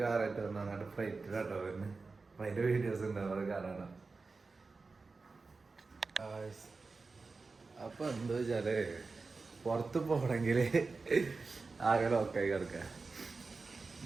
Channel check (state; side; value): quieter; left; 4.1 dB